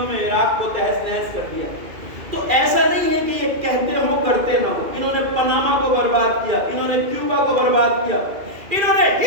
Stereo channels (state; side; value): late; left; 2.4 ms